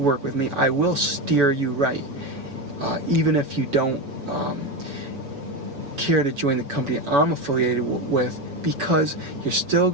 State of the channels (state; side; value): late; left; 6.6 ms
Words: with me, I will steer you right. Even if you don't care to join the company I'm affiliated with, because you're still